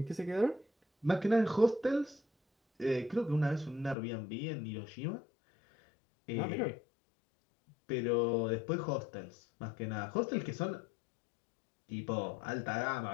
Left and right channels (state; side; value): drops out; right; at 4.0 s